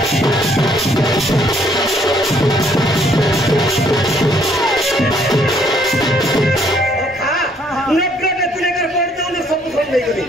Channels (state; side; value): normal; both; correlation 0.65